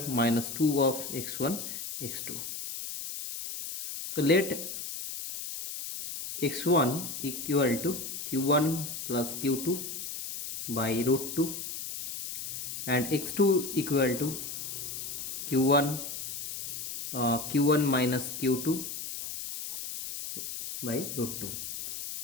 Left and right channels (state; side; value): noise; left; hiss, 7 dB below the sound